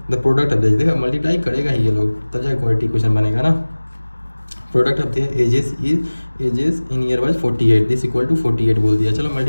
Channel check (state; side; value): inverted; both; correlation -1.00